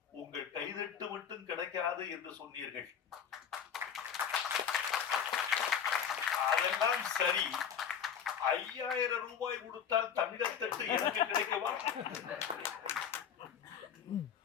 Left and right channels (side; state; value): right; quieter; 7.9 dB